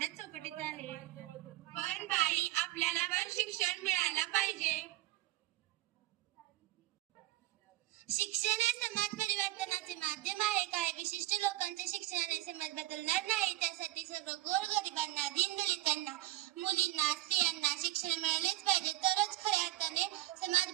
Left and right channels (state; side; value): quieter; left; 16.5 dB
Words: चौकटीत आहे. पण बाई, आपल्याला पण शिक्षण मिळायला पाहिजे. शिक्षण हे समाज परिवर्तनाचे माध्यम आहे. काही विशिष्ट लोकांच्या शिक्षणाने समाज बदलणार नाही. त्यासाठी सर्व गोरगरिबांना, दीनदलितांना, मुलींना, स्त्रियांना शिक्षण मिळालेच पाहिजे, तरच खऱ्या अर्थाने समाज